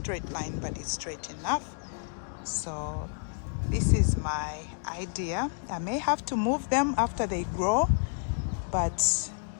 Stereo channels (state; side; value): silent; right; 58 dB below the other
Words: line, but it's straight enough. So this is my idea. I may have to move them after they grow, but